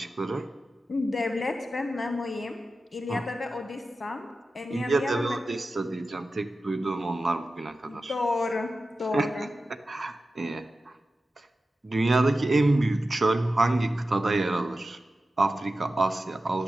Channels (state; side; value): normal; both; correlation 0.93